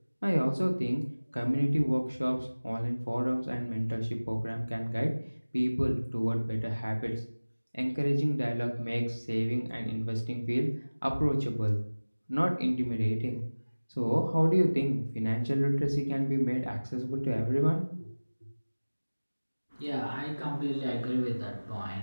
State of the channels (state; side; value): inverted; both; correlation -1.00